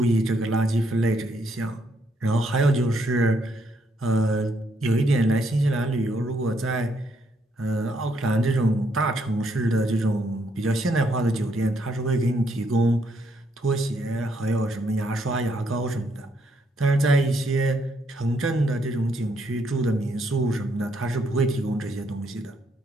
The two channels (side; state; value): both; normal; correlation 0.73